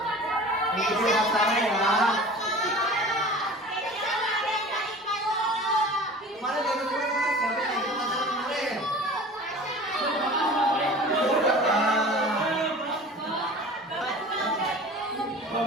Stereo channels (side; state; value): both; normal; correlation 0.40